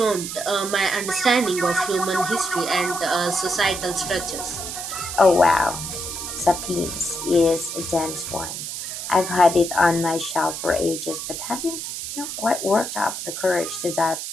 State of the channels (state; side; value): noise; right; hiss, 6 dB below the sound